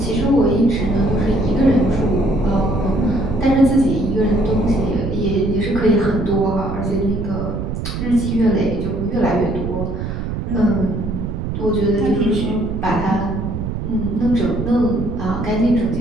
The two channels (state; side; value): noise; right; rumble, 4 dB below the sound